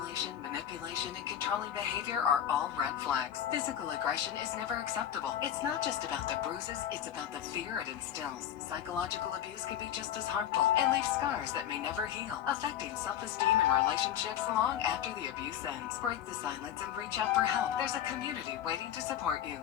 manipulation, and control controlling behavior are all red flags. Physical aggression is never acceptable. It's not just about the bruises, it's about the fear it instills. Psychological abuse can be just as harmful and leave scars that may never heal, affecting self-esteem and relationships long after the abuse ends. Break the silence and reach out for help. There's a community waiting to support you.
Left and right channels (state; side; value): quieter; right; 10.5 dB